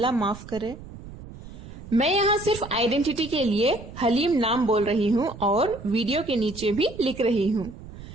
माफ करे। मैं यहाँ सिर्फ आइडेंटिटी के लिए हलीम नाम बोल रही हूँ और वीडियो के नीचे भी लिख रही हूँ।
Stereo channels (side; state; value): right; noise; rumble, 15 dB below the sound